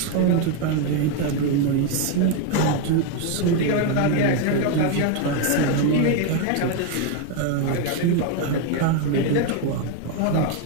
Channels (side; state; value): both; different; correlation 0.01